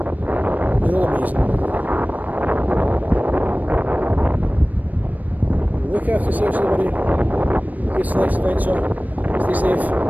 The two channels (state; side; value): late; left; 0.079 ms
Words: You're all amazing. Look after yourselves, everybody. Get to the next adventure. Stay safe.